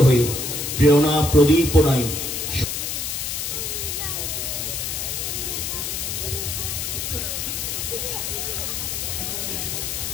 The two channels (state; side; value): noise; left; hiss, 3 dB below the sound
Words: হয়ে প্রেরণা প্রদীপনায়